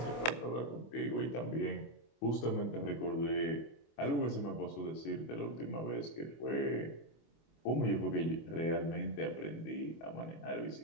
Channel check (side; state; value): right; late; 25 ms